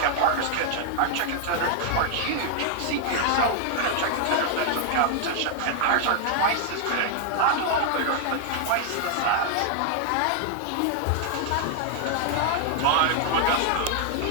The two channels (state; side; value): different; both; correlation 0.00